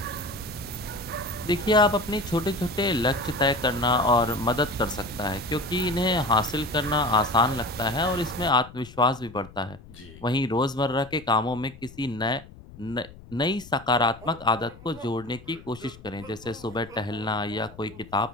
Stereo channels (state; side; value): noise; left; rumble, 19 dB below the sound